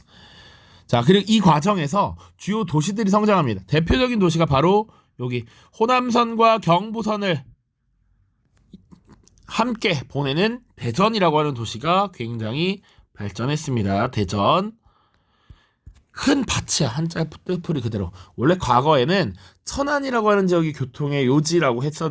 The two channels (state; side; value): identical; both; correlation 1.00